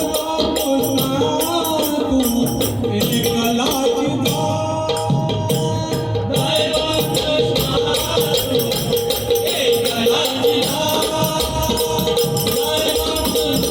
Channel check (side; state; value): right; noise; hum, 29 dB below the sound